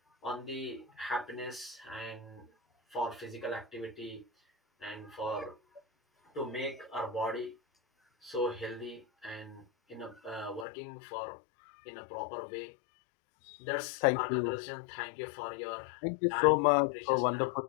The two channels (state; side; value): drops out; right; at 10.7 s